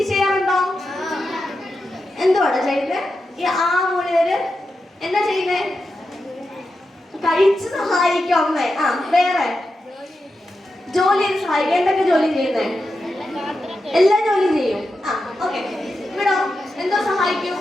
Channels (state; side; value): normal; both; correlation 0.89